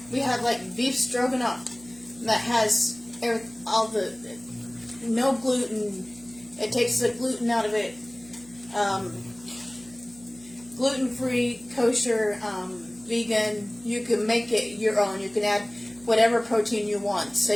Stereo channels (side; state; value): right; noise; hum, 24 dB below the sound